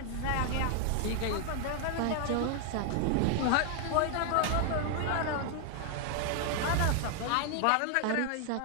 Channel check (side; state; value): both; different; correlation 0.00